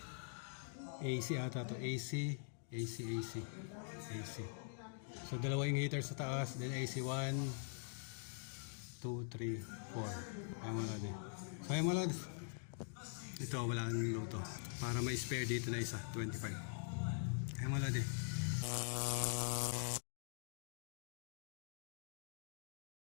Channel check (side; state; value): right; silent; digital silence